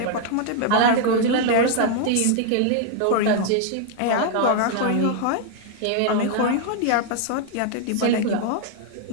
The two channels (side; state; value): both; different; correlation 0.00